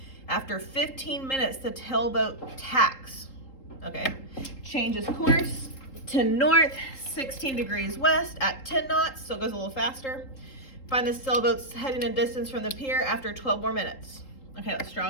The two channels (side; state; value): right; late; 3.8 ms